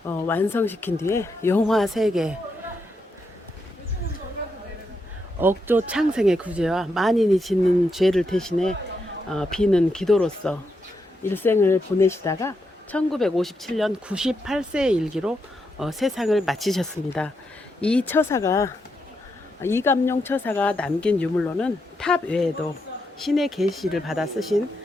완성시킨 뒤에 용화 3개, 억조 창생의 구제와 만인이 짓는 죄를 대신해 비는 기도로서 일생을 보내시다가 1957년 98세의 일기로 세상을 마치셨습니다. 이 처사가 이감룡 처사가 남긴 유물로는 탑 외에도 신의 계시를 받아 쓰신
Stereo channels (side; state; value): both; normal; correlation 0.82